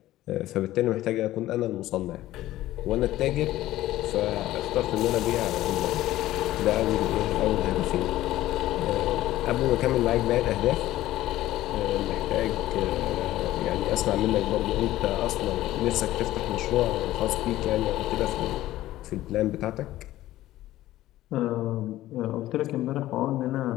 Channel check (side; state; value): right; quieter; 15.2 dB